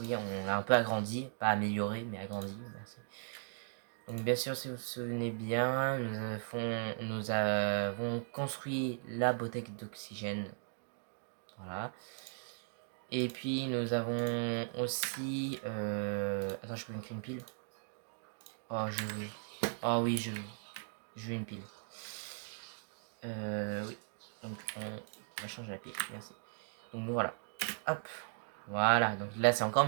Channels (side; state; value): left; silent; digital silence